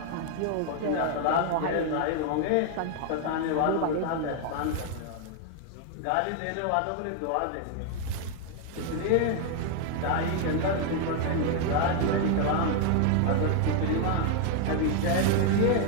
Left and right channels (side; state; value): both; different; correlation 0.00